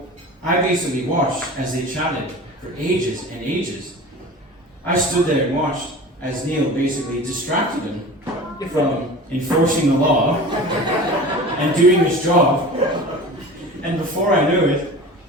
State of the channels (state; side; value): normal; both; correlation 0.36